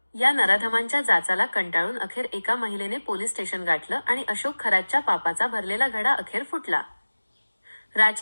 या नराधमांच्या जाचाला कंटाळून अखेर एका महिलेने पोलीस स्टेशन गाठलं आणि अशोक खरातच्या पापाचा भरलेला घडा अखेर फुटला.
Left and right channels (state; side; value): inverted; both; correlation -1.00